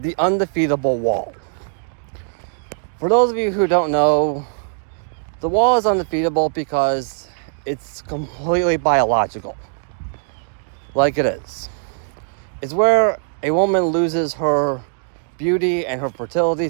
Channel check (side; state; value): left; silent; digital silence